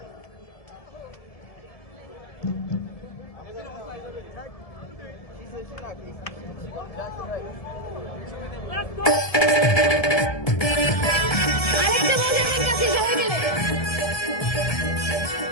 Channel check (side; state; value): right; late; 1.7 ms